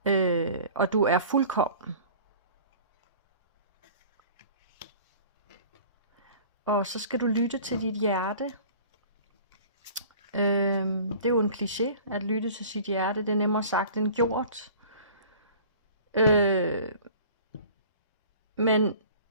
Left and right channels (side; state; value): both; inverted; correlation -0.45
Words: Og du er fuldkommen. Og så skal du lytte til dit hjerte. Det er jo en kliché, at lytte til sit hjerte. Det er nemmere sagt end gjort. Men